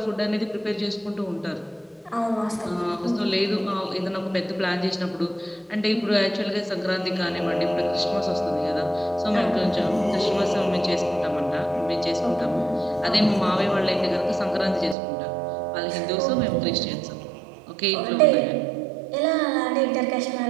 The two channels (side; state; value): left; drops out; at 15.0 s